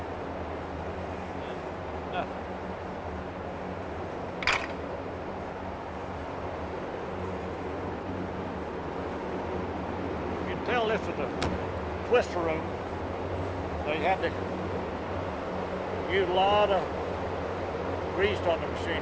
Yeah. You can tell this is a twister room. They had to use a lot of grease on the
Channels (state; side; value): identical; both; correlation 1.00